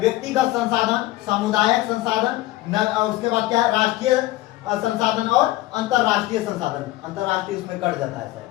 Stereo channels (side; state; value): right; quieter; 17.2 dB